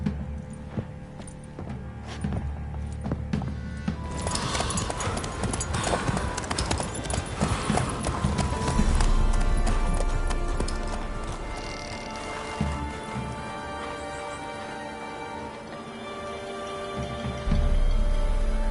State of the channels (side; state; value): both; identical; correlation 1.00